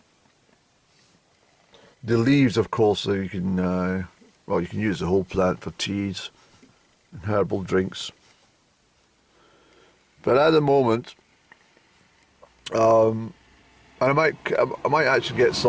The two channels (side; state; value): both; identical; correlation 1.00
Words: The leaves, of course, you can well, you can use the whole plant for teas and herbal drinks. But at the moment, and I might actually get